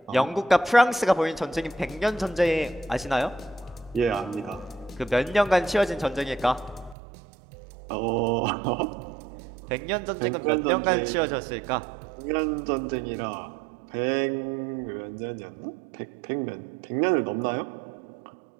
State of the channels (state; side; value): drops out; left; at 7.0 s